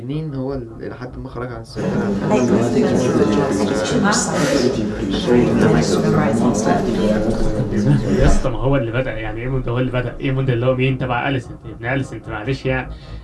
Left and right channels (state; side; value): identical; both; correlation 1.00